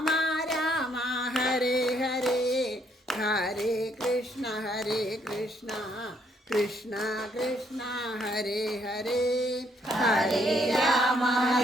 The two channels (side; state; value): both; normal; correlation 0.70